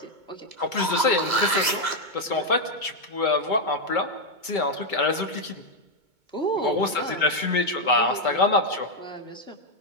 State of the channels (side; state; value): left; late; 2.2 ms